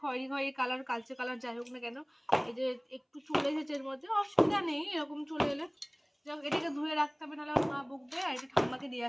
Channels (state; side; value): identical; both; correlation 1.00